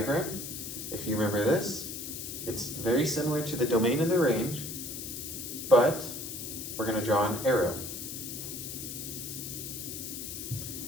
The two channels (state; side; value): noise; left; hiss, 7 dB below the sound